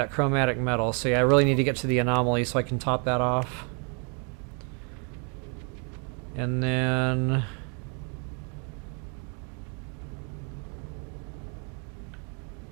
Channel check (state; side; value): quieter; left; 37.9 dB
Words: chromatic metal, so yeah, I really need to get to the anomaly so I can top that off. And then...